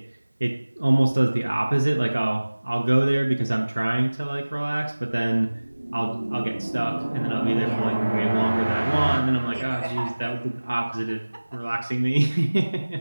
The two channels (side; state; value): both; inverted; correlation -1.00